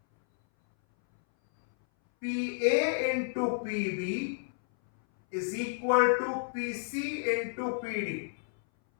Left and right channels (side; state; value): right; silent; 57 dB below the other